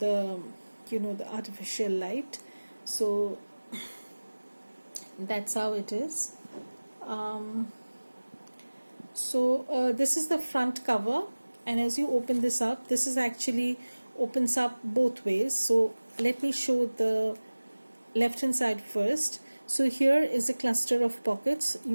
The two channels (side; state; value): both; inverted; correlation -1.00